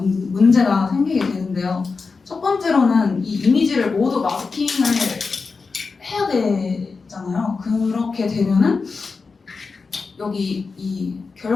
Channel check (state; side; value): quieter; right; 4.5 dB